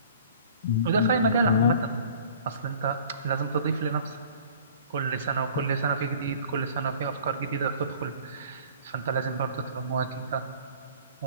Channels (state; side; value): inverted; both; correlation -0.48